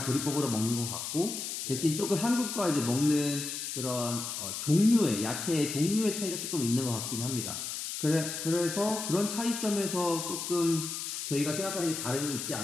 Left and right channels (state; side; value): noise; left; hiss, 5 dB below the sound